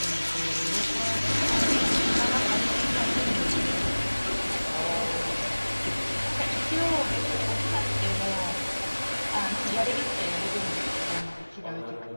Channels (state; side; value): inverted; both; correlation -1.00